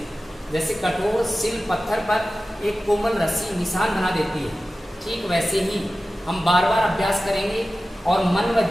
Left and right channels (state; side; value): normal; both; correlation 0.95